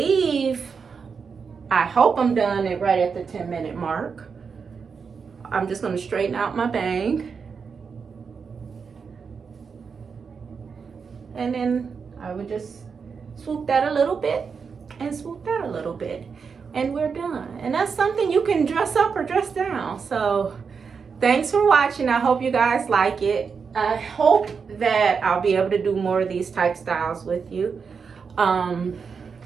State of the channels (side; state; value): left; quieter; 5.7 dB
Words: I hope I'm done it right at the 10-minute mark. I'm just going to straighten out my bang. And then I would just swoop that a little bit and swoop that a little bit. And we're done. And that's something you can dress up or dress down. So thanks for watching. I hope you guys like it. I hope that I'll be able to do more of these type styles with you.